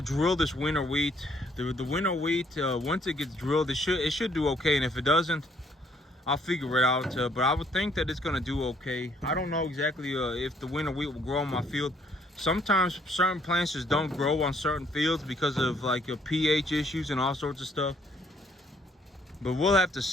drill this winter wheat. The winter wheat, once it gets drilled, it should do okay, and if it doesn't, I'll figure it out. But I would think that it's gonna do okay. I don't know exactly if the winter wheat will grow on my field. Sometimes certain plants just don't grow on certain fields because of like pH issues and all sorts of stuff. But we'll have to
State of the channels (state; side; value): normal; both; correlation 0.66